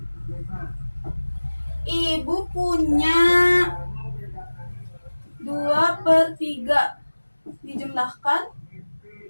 ibu punya 2/3 dijumlahkan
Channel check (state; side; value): inverted; both; correlation -1.00